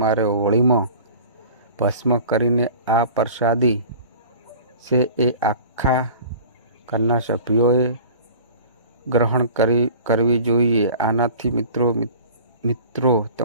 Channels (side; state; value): both; inverted; correlation -0.42